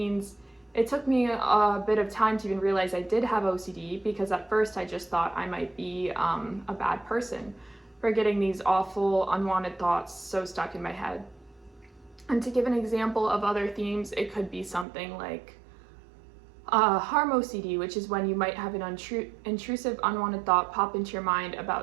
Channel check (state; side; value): drops out; left; at 14.9 s